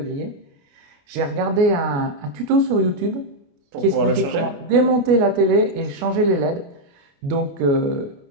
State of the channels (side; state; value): left; late; 29 ms